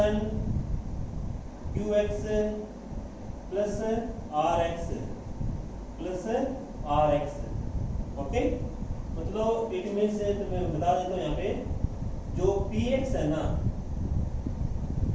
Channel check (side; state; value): both; identical; correlation 1.00